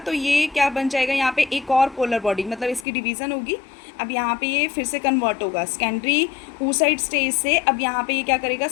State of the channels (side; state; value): right; drops out; at 2.9 s